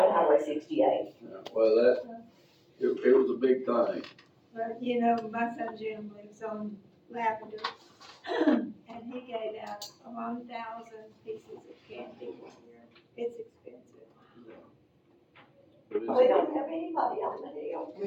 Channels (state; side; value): identical; both; correlation 1.00